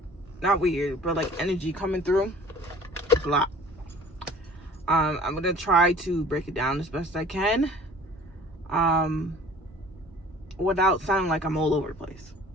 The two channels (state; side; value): normal; both; correlation 0.49